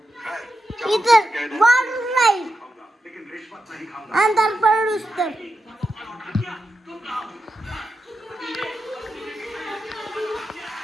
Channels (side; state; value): both; normal; correlation 0.88